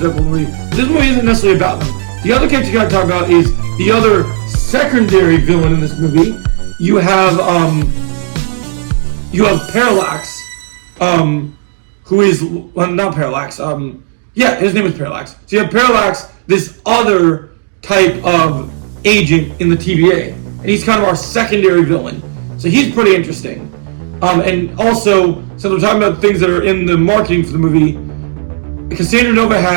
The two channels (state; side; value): silent; left; digital silence